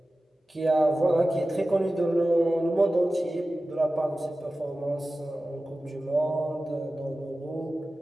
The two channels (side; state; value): both; normal; correlation 0.95